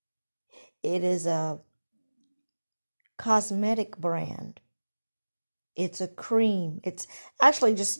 it is a cosmetic brand. It's a cream. It's actually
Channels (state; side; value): inverted; both; correlation -1.00